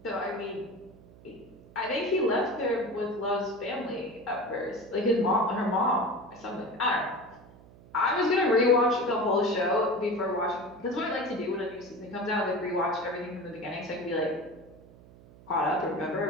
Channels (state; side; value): noise; right; hum, 22 dB below the sound